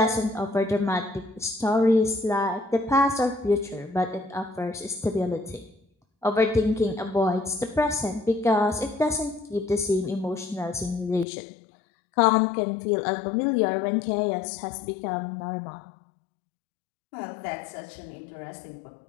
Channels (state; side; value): drops out; right; at 11.2 s